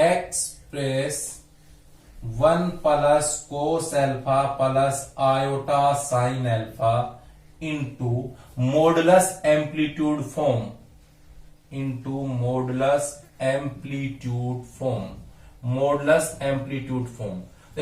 1 plus cos alpha plus iota sine alpha into modulus amplitude form, into modulus amplitude form. Modulus amplitude form,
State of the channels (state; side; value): identical; both; correlation 1.00